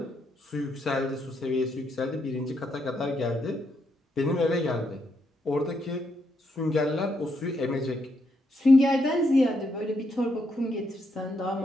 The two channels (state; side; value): normal; both; correlation 0.78